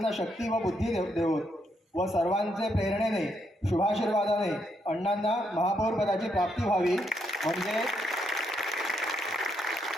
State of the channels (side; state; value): both; normal; correlation 0.77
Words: शक्ती व बुद्धी देवोत व सर्वांचे प्रेरणेने, शुभाशीर्वादाने अण्णांना महापौर पदाची प्राप्ती व्हावी